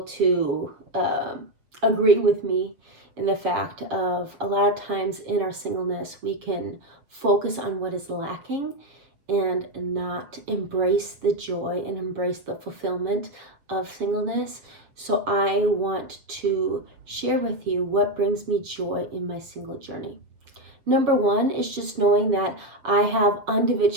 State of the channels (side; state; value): left; late; 7.5 ms